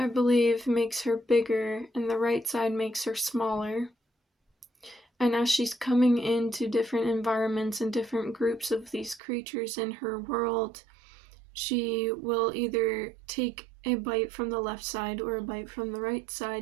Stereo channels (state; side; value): drops out; left; at 9.2 s